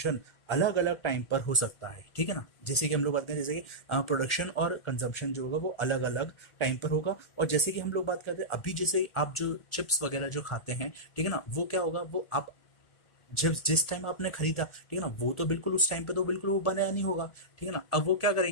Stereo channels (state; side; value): late; right; 1.4 ms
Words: अलग अलग टाइम पर हो सकता है, ठीक है ना। जैसे कि हम लोग बात करें, जैसे कि प्रोडक्शन और कंजम्पशन जो होगा वो अलग अलग टाइम पर होगा। और जैसे कि हम लोग बात करते हैं अभी, जैसे आप जो चिप्स वगैरह जो खाते हैं, ठीक है ना, वो क्या होगा, वो आप जब जिस टाइम आपने खरीदा, ठीक है ना, वो तो बिल्कुल उस टाइम पे तो बिल्कुल वो बनाया नहीं होगा, ठीक है ना। अब वो क्या